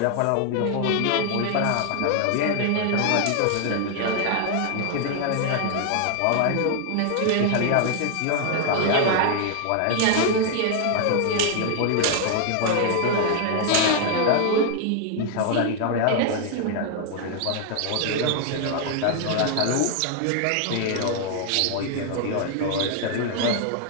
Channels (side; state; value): both; different; correlation 0.00